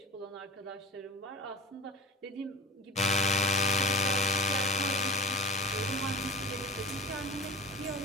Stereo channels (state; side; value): normal; both; correlation 0.33